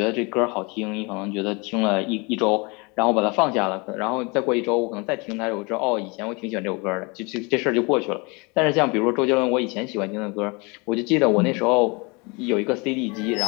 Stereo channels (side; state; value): right; quieter; 28.7 dB